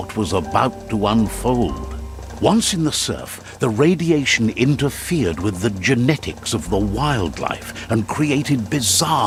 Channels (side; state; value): both; identical; correlation 1.00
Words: was about to unfold. Once in the surf, the radiation interfered with the genetics of the wildlife and created